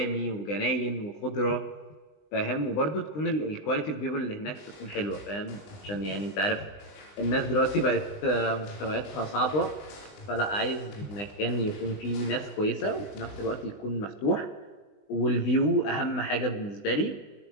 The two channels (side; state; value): right; late; 20 ms